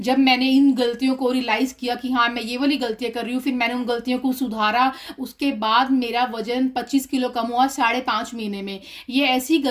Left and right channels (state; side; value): identical; both; correlation 1.00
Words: मैंने इन गलतियों को रियलाइज किया कि हाँ मैं ये वाली गलतियां कर रही हूँ, फिर मैंने उन गलतियों को सुधारा। उसके बाद मेरा वजन 25 किलो कम हुआ 5.5 महीने में। ये ऐसी